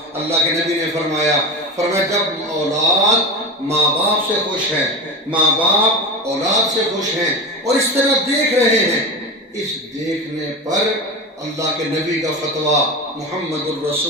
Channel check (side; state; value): both; normal; correlation 0.25